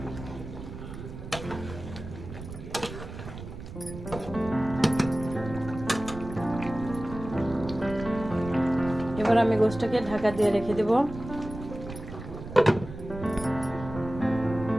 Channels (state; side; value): noise; right; rumble, 11 dB below the sound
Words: এবার আমি গোশতটাকে ঢাকা দিয়ে রেখে দেব।